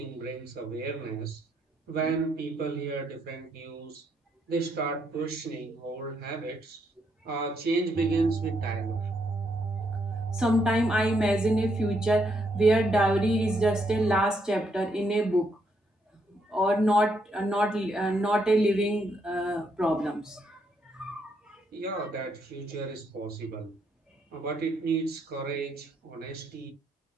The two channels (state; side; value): normal; both; correlation 0.75